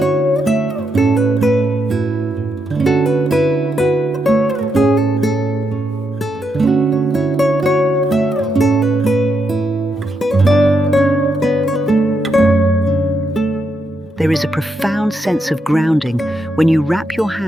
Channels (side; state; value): both; normal; correlation 0.81